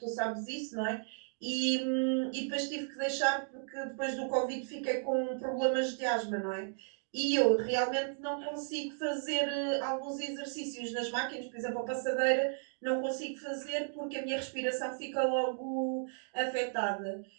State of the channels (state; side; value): silent; left; digital silence